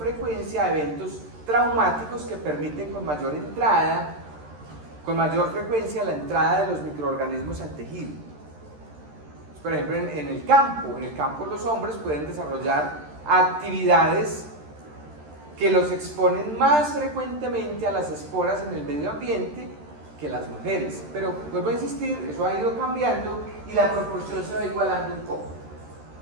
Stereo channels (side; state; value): left; late; 13 ms